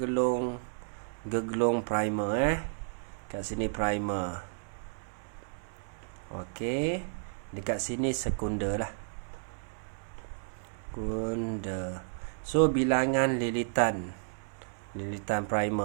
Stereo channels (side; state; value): left; silent; 56 dB below the other